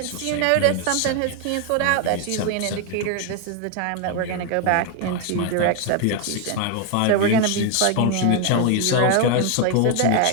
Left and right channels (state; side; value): different; both; correlation 0.01